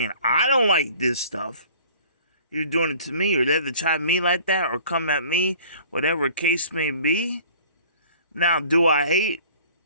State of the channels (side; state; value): both; inverted; correlation -0.50